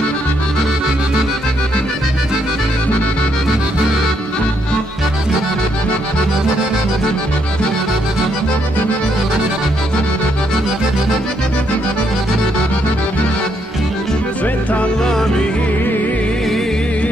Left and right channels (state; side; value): normal; both; correlation 0.74